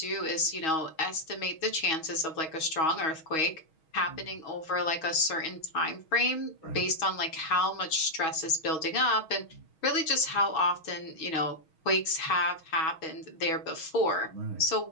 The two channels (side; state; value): right; late; 6.3 ms